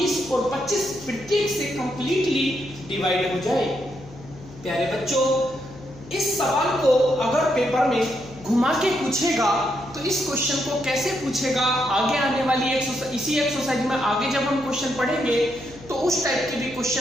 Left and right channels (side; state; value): left; noise; hum, 19 dB below the sound